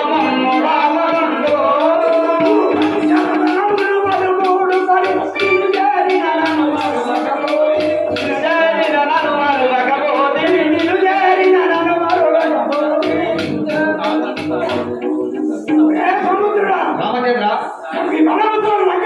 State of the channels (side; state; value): both; identical; correlation 1.00